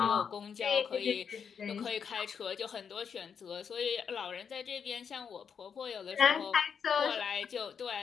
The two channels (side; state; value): right; quieter; 6.9 dB